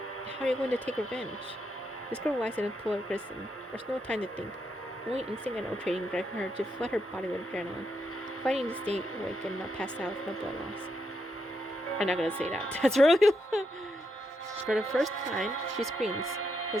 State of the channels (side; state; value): both; normal; correlation 0.81